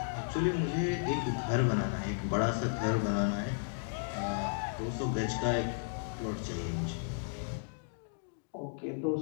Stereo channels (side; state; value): right; silent; digital silence